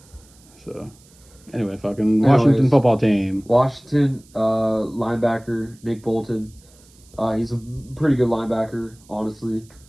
So, anyway, fucking Washington football team. Washington linebacker Nick Bolton. He's a pretty good linebacker, honestly.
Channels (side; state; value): right; noise; hiss, 28 dB below the sound